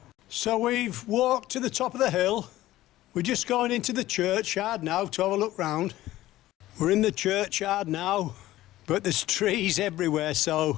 So we've walked to the top of the hill. We're just going into the churchyard now to have a look round. We're in the churchyard now, but there's trees everywhere, so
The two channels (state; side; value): quieter; right; 15.6 dB